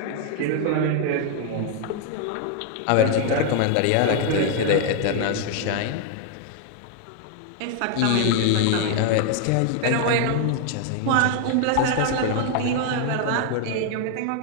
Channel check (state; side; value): different; both; correlation 0.00